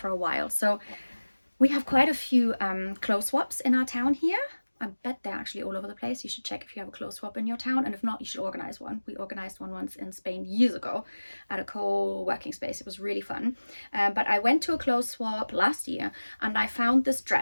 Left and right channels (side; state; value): both; inverted; correlation -1.00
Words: a while. So we have quite a few clothes swaps in our town here. I bet they're actually all over the place. You should check if you have a clothes swap in your town, and if not, you should organize one. We organized one once in Spain years ago at a co-working space. It was really fun. But I went to a clothes swap last year and I found this